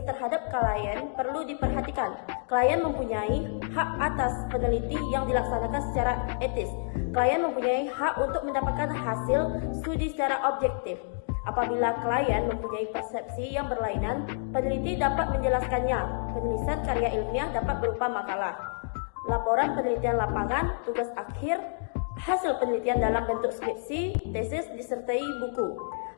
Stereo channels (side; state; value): right; silent; digital silence